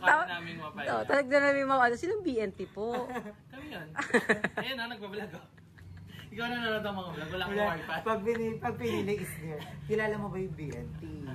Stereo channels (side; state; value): both; identical; correlation 1.00